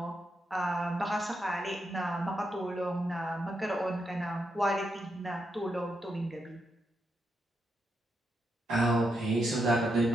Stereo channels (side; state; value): both; normal; correlation 0.82